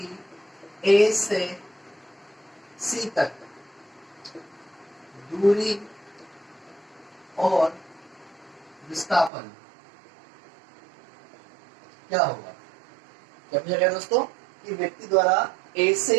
ए से सी तक दूरी और विस्थापन क्या होगा। क्या पूछा गया दोस्तों कि व्यक्ति द्वारा ए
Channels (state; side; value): drops out; left; at 9.3 s